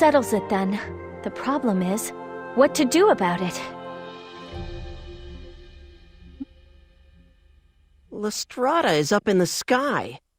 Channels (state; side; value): identical; both; correlation 1.00